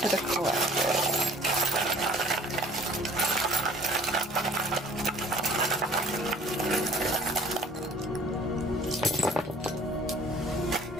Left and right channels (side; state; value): both; normal; correlation 0.51